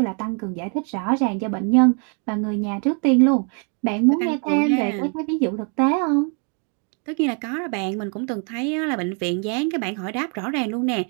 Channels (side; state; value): left; quieter; 39.5 dB